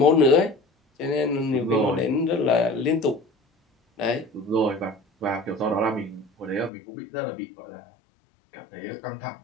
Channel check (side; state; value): right; drops out; at 6.7 s